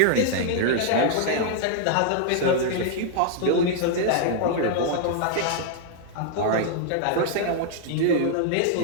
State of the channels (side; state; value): both; different; correlation 0.00